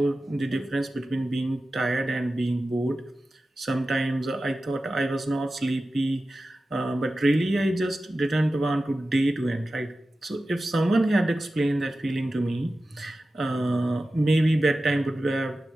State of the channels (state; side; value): normal; both; correlation 0.94